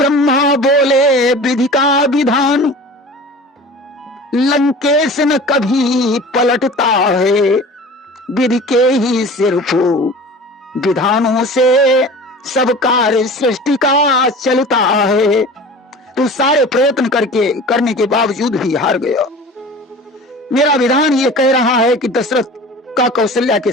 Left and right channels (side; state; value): both; normal; correlation 0.39